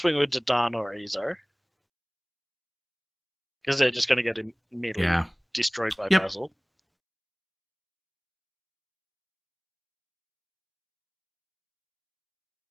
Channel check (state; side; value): identical; both; correlation 1.00